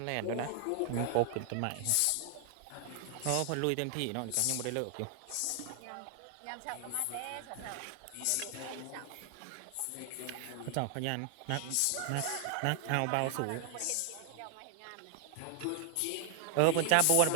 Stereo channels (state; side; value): different; both; correlation 0.00